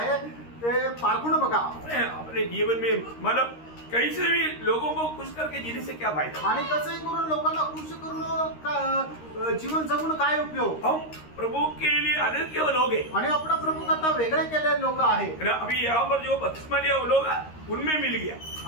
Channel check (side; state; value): right; late; 13 ms